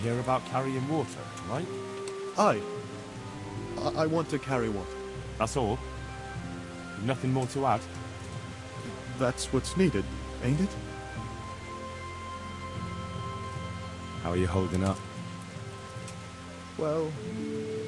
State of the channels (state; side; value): identical; both; correlation 1.00